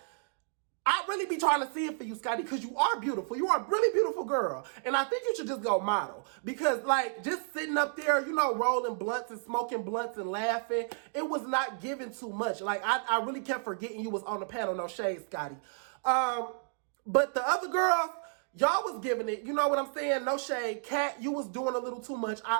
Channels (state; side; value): silent; left; digital silence